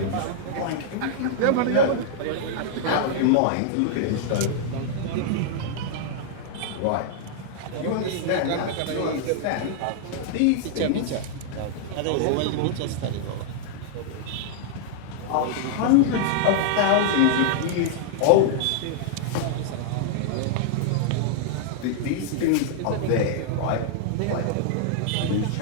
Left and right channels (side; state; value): both; different; correlation -0.01